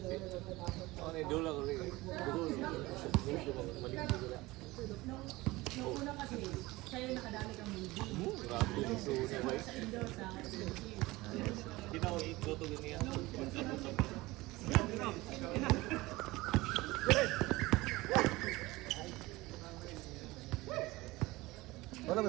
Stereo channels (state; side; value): quieter; left; 20.3 dB